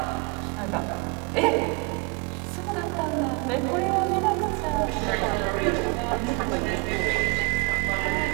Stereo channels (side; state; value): left; quieter; 30.5 dB